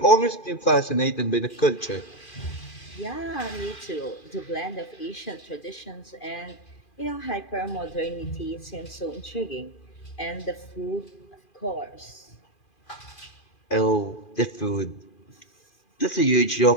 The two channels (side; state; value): right; late; 2.4 ms